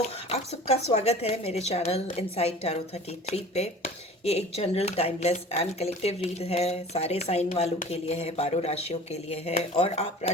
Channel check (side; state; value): both; normal; correlation 0.42